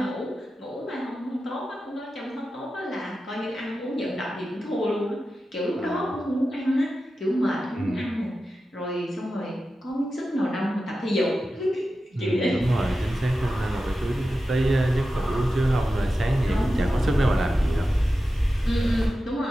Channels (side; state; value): both; normal; correlation 0.92